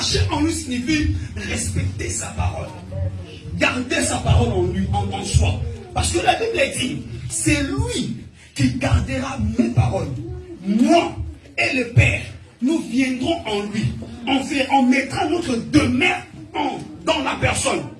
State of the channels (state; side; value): identical; both; correlation 1.00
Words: en lui signifie respecter sa parole. Garder sa parole en lui, en soi. Parce que la Bible dit, c'est lui qui gardera mes paroles, moi et le Père, nous viendrons en lui. On mettra notre demeure dans la personne.